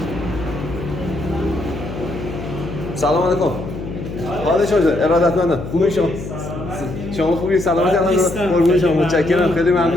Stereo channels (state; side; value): noise; left; hum, 9 dB below the sound